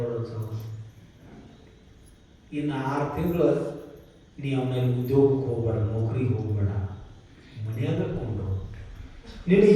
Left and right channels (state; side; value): identical; both; correlation 1.00